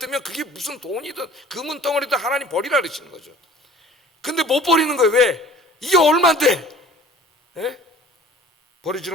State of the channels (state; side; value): normal; both; correlation 0.47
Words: 그게 무슨 돈이든 금은 덩어리든 하나님 버리라 그러시는 거죠. 근데 못 버리는 거예요. 왜? 이게 얼만데